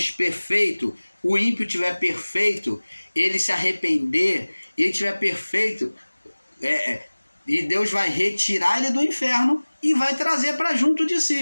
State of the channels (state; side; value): inverted; both; correlation -1.00